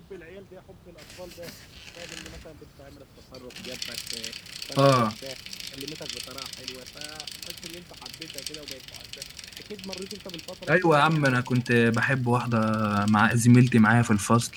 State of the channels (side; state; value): both; identical; correlation 1.00